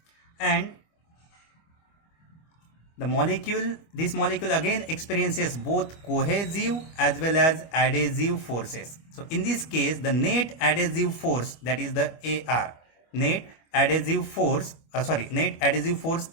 and this molecule again experiences both cohesive as well as adhesive forces. So in this case the net adhesive force, that is the AR, net adhesive force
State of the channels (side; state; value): right; late; 25 ms